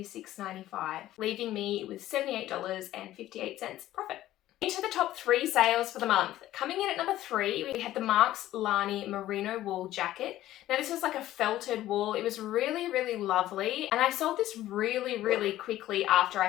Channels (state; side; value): quieter; right; 14.2 dB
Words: leaving me with $78.58 profit. Into the top 3 sales for the month. Coming in at number 3, we had the Marks Lani merino wool jacket. Now this was like a felted wool. It was really, really lovely. And I sold this really, really quickly after I